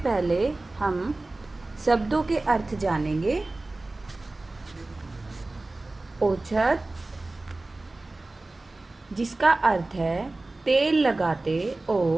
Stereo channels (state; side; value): quieter; left; 3.0 dB